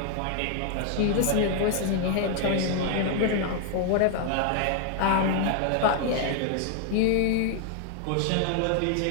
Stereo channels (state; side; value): different; both; correlation 0.00